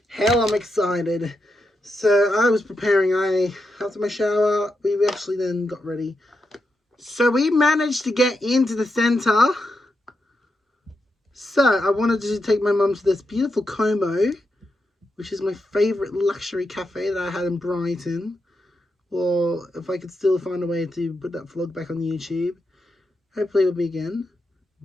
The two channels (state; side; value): normal; both; correlation 0.85